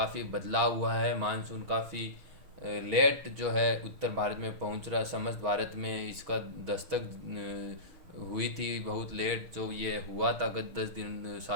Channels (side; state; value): left; late; 6.3 ms